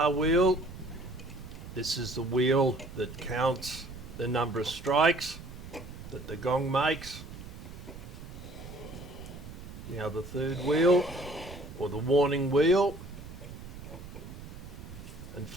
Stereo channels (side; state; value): right; noise; rumble, 13 dB below the sound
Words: wheel. This is the wheel that counts the number of strikes that the gong makes. Now the third wheel, or the warning wheel. And